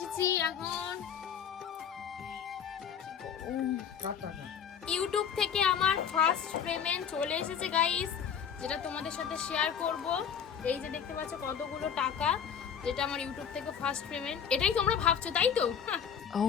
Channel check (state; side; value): quieter; right; 7.7 dB